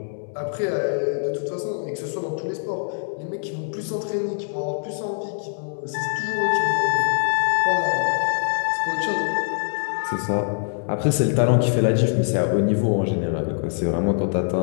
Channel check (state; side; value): silent; right; 63 dB below the other